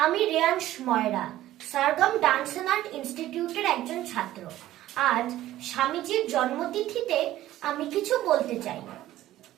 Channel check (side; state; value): left; quieter; 14.3 dB